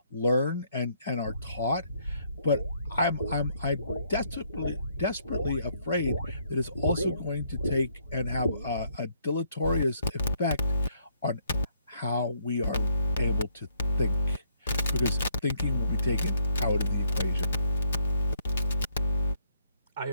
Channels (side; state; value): both; inverted; correlation -0.70